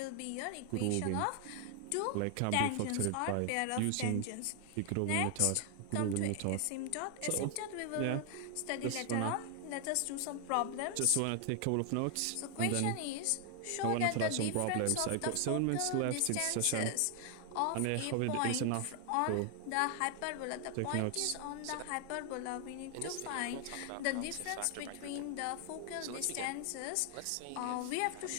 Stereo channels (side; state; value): both; different; correlation 0.00